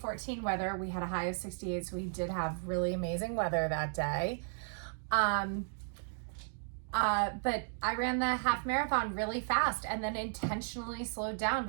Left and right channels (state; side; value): silent; left; digital silence